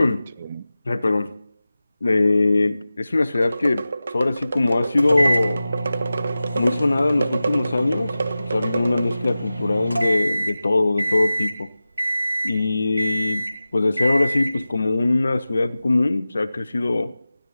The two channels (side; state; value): both; inverted; correlation -0.95